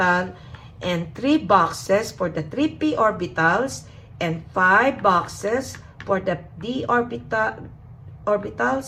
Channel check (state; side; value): identical; both; correlation 1.00